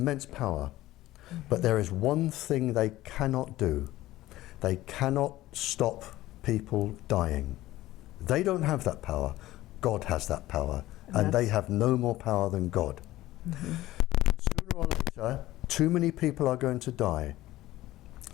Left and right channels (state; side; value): quieter; right; 16.2 dB